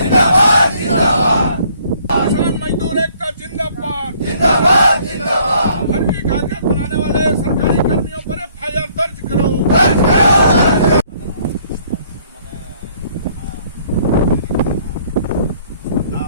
किसान मजदूर एकता जिंदाबाद, फर्जी कागजात बनाने वाले सरकारी कर्मियों पर FIR दर्ज करो।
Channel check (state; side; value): inverted; both; correlation -0.62